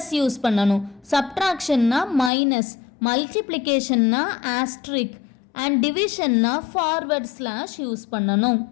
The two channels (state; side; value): drops out; right; at 2.3 s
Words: யூஸ் பண்ணணும், சப்ட்ராக்ஷன்னா மைனஸ், மல்டிப்ளிகேஷன்னா ஆஸ்ட்ரிக், அண்ட் டிவிஷன்னா ஃபார்வர்ட் ஸ்லாஷ் யூஸ் பண்ணணும்.